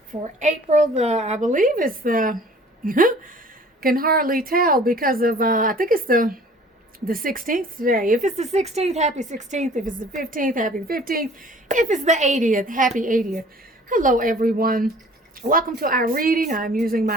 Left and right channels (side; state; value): both; normal; correlation 0.50